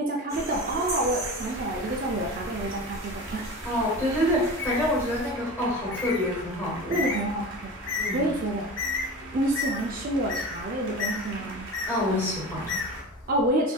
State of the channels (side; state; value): both; normal; correlation 0.31